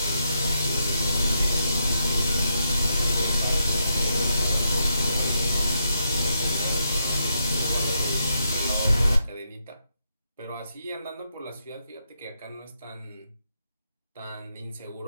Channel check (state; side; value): inverted; both; correlation -0.81